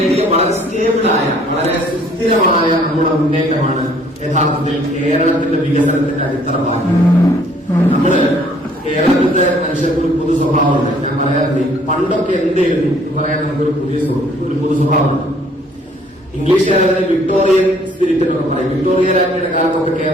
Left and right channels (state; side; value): normal; both; correlation 0.60